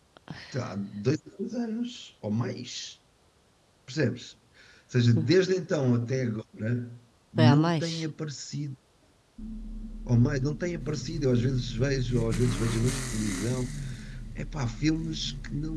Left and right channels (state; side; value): identical; both; correlation 1.00